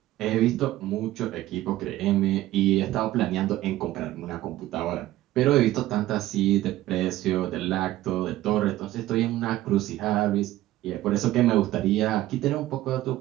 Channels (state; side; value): quieter; left; 15.4 dB